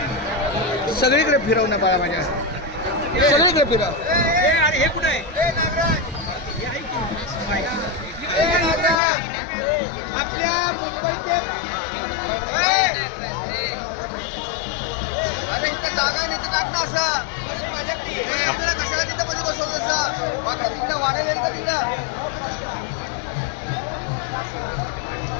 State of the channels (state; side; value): drops out; right; at 9.0 s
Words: सगळीकडे फिरव ना बाळा माझ्या सगळीकडे फिरव हे कुठे आहे आपल्या मुंबईचे जागा नाही तर टाक ना असं कशाला तिथं मध्ये बसवलं असं तिथं वाढेल का तिथं